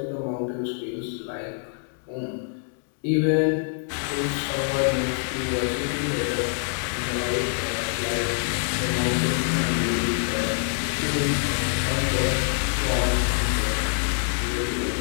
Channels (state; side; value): silent; right; digital silence